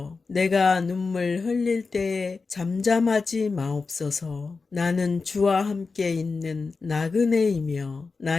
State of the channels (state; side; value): quieter; right; 4.4 dB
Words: 내가 눈물 흘릴 때에 잠잠하지 마옵소서. 나는 주와 함께 있는 나그네이며